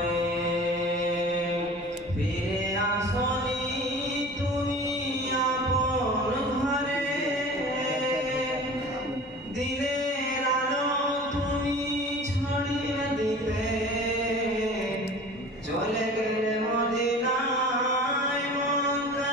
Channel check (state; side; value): normal; both; correlation 0.40